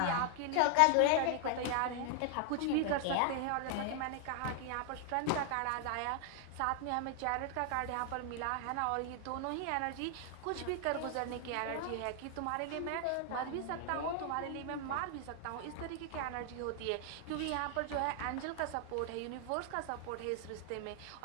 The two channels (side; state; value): both; different; correlation 0.00